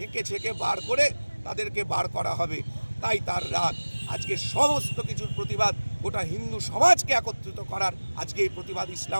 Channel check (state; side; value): inverted; both; correlation -1.00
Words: ছেঁকে বার করে তাদেরকে বার করা হবে, তাই তার রাগ। আজকে সমস্ত কিছুর প্রতিবাদ গোটা হিন্দু সমাজকে একত্রিত করার আজকে এই প্রতিবাদ